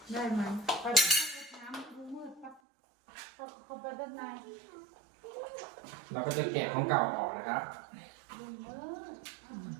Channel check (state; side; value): drops out; left; at 2.6 s